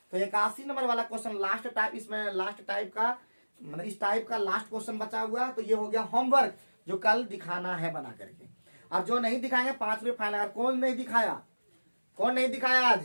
तो 81 नंबर वाला क्वेश्चन लास्ट टाइप, इसमें लास्ट टाइप का मतलब इस टाइप का लास्ट क्वेश्चन बचा हुआ है, तो ये हो गया होमवर्क, जो कल दिखाना है बना करके, और जो नहीं दिखाएंगे 5 रुपये फाइन। अगर कौन नहीं दिखाया, कौन नहीं दिखाया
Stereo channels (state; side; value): inverted; both; correlation -1.00